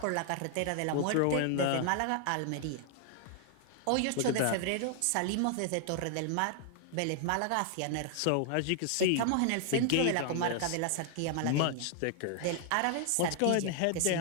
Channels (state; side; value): different; both; correlation 0.00